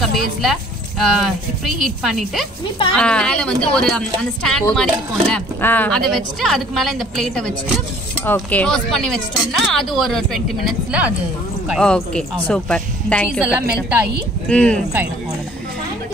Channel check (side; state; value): both; normal; correlation 0.55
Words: பேஸ்ல ப்ரீ ஹீட் பண்ணிட்டு அது மேல வந்து ஒரு அந்த ஸ்டாண்ட் மாதிரி இருக்கும்ல, அதை வச்சுட்டு அதுக்கு மேல இந்த பிளேட்டை வச்சுட்டு ஓகே க்ளோஸ் பண்ணி வச்சிட்டோம்னா அது ஒரு 20 minutesல அது குக் ஆயிடும். Okay super. Thank you. எல்லாம் மெல்ட் ஆகி குக் ஆயிடும். அவ்வளவுதான்.